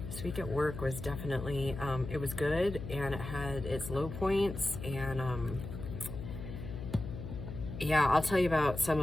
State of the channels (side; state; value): left; noise; hum, 8 dB below the sound